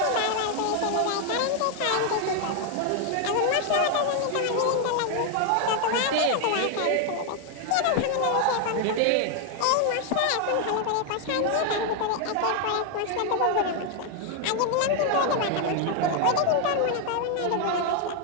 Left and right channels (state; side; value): different; both; correlation 0.00